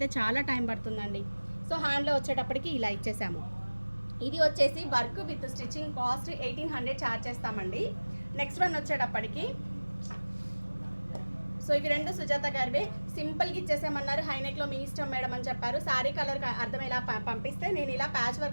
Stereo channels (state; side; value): inverted; both; correlation -1.00